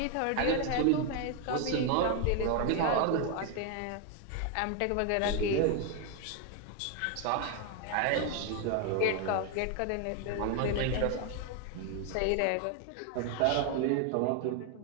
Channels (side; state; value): both; different; correlation 0.01